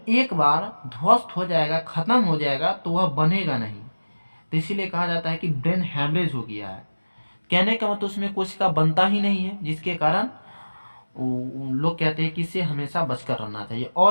एक बार ध्वस्त हो जाएगा, खत्म हो जाएगा, तो वह बनेगा नहीं। तो इसीलिए कहा जाता है कि ब्रेन हैमरेज हो गया है। कहने का मतलब उसमें कोशिका बनता ही नहीं है, जिसके कारण लोग कहते हैं कि इसे हमेशा बचकर रहना चाहिए।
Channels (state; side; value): inverted; both; correlation -1.00